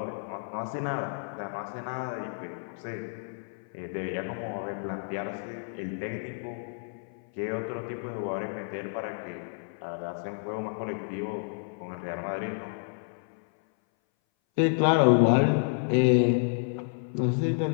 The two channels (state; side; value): silent; right; 58 dB below the other